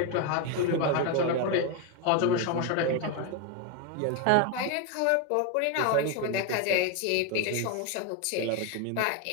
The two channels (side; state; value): both; different; correlation 0.02